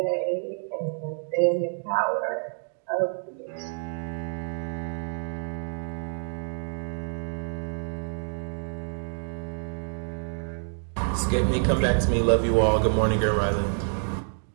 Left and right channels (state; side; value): silent; left; 60 dB below the other